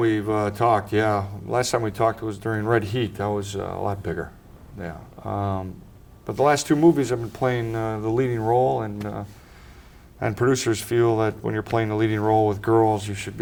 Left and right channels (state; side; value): identical; both; correlation 1.00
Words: talked, yeah. Last time we talked was during Red Heat. I was a lot bigger, yeah. But the last two movies I've been playing the leading role, and producers feel that when you're playing the leading role with girls, you should